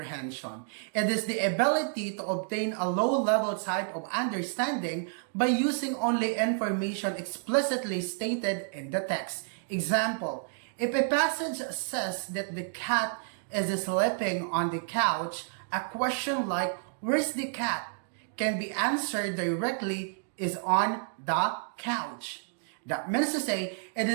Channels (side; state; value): left; silent; digital silence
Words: It is the ability to obtain a low-level type of understanding by using only information explicitly stated in the text. Example, if a passage says that the cat is sleeping on the couch, a question like, "Where's the cat?" can be answered directly, "is on the couch." That means to say, it